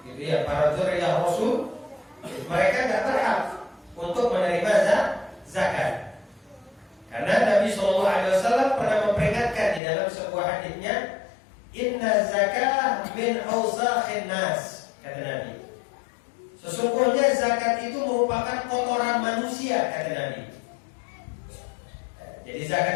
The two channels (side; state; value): right; drops out; at 9.8 s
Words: gitu ya, para dzurriyyah Rasul, mereka tidak berhak untuk menerima zakat. Karena Nabi SAW pernah memperingatkan di dalam sebuah hadisnya, inna zakah min awsakhin nas, kata Nabi. Sesungguhnya zakat itu merupakan kotoran manusia, kata Nabi. Jadi